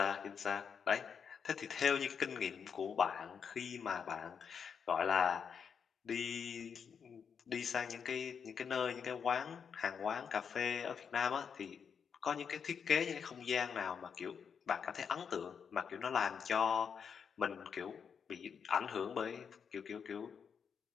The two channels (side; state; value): right; quieter; 6.8 dB